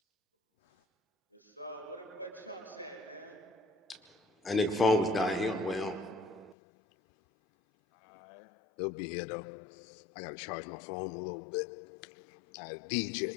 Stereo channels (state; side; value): drops out; right; at 6.6 s